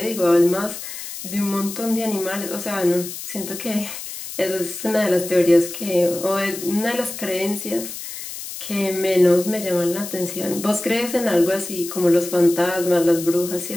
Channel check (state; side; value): noise; left; hiss, 10 dB below the sound